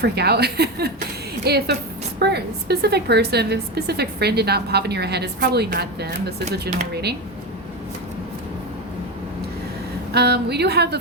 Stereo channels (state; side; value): normal; both; correlation 0.16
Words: out. If a specific person, if a specific friend did not pop in your head, it's probably not them. This is a general reading. We do have the